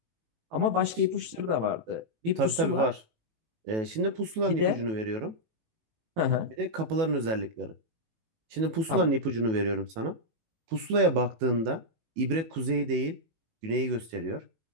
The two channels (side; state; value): left; late; 18 ms